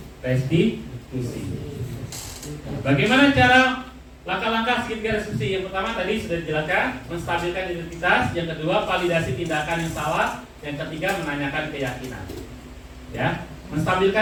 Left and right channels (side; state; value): both; identical; correlation 1.00